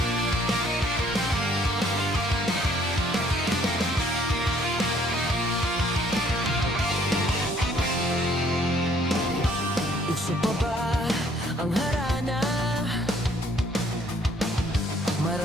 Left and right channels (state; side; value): normal; both; correlation 0.62